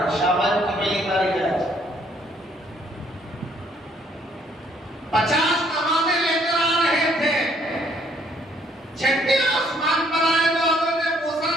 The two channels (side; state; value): both; normal; correlation 0.66